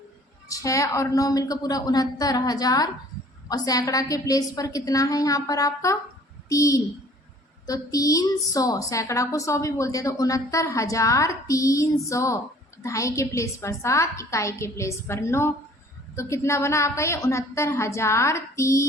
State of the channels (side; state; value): both; normal; correlation 0.53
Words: 6 और 9 मिलकर पूरा 69,000, और सैकड़ा के प्लेस पर कितना है यहाँ पर आपका 3, तो 300, सैकड़ा को 100 भी बोलते हैं, तो 69,300, ढाई के प्लेस पर 7, इकाई के प्लेस पर 9, तो कितना बना आपका ये